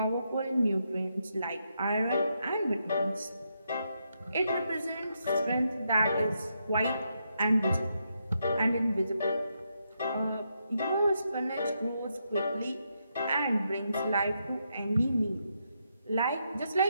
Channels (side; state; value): both; inverted; correlation -0.81